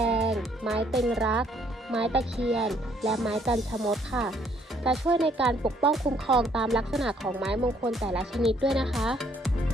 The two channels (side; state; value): both; normal; correlation 0.65